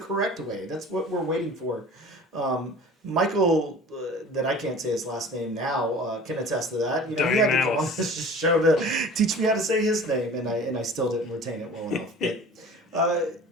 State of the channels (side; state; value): both; normal; correlation 0.42